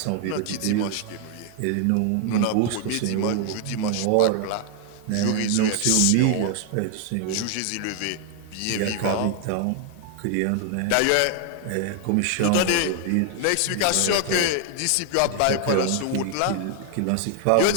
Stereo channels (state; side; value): different; both; correlation 0.00